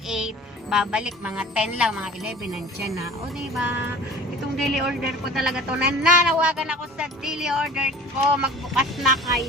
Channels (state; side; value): normal; both; correlation 0.43